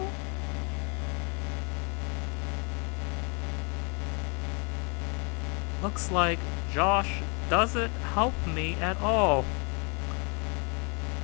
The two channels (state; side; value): quieter; right; 33.8 dB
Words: Looks like Josh doesn't help me at all.